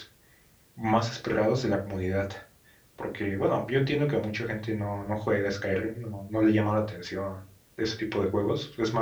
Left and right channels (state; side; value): identical; both; correlation 1.00